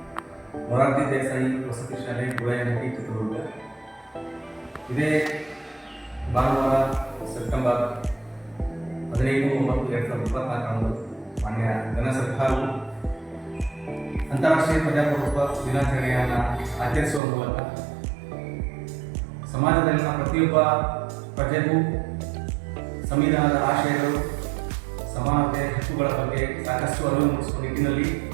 ಮೊರಾರ್ಜಿ ದೇಸಾಯಿ ವಸತಿ ಶಾಲೆ ಗುಳೇನಹಟ್ಟಿ ಚಿತ್ರದುರ್ಗ. ಇದೇ ಭಾನುವಾರ ಸೆಪ್ಟೆಂಬರ್ 15/9/2024 ಮಾನ್ಯ ಘನ ಸರ್ಕಾರವು ಅಂತಾರಾಷ್ಟ್ರೀಯ ಪ್ರಜಾಪ್ರಭುತ್ವ ದಿನಾಚರಣೆಯನ್ನು ಆಚರಿಸುವ ಮೂಲಕ ಸಮಾಜದಲ್ಲಿನ ಪ್ರತಿಯೊಬ್ಬ ಪ್ರಜೆಗೂ ಸಂವಿಧಾನದ ಆಶಯಗಳು, ಸಮಾನತೆ, ಹಕ್ಕುಗಳ ಬಗ್ಗೆ ಸಾಕಷ್ಟು ಅರಿವು ಮೂಡಿಸುವ ನಿಟ್ಟಿನಲ್ಲಿ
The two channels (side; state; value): left; drops out; at 17.2 s